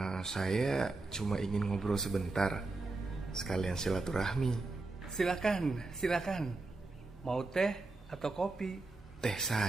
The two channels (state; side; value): quieter; left; 3.4 dB